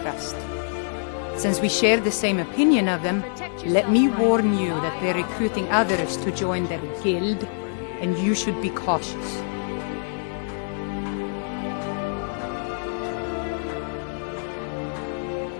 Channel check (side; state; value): right; silent; digital silence